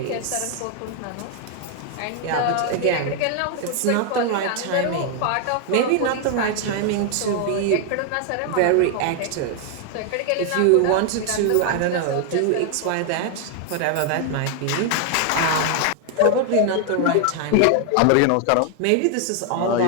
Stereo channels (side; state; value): both; different; correlation 0.00